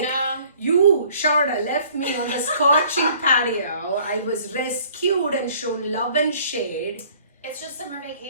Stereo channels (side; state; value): both; inverted; correlation -0.55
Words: no. You, Sharda, left me on the scorching patio. I was rescued and shown love and shade. It's just summer